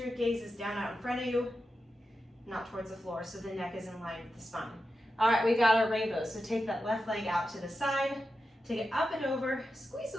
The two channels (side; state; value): both; normal; correlation 0.90